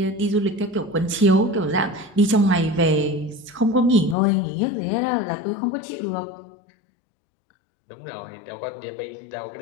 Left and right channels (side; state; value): right; drops out; at 4.2 s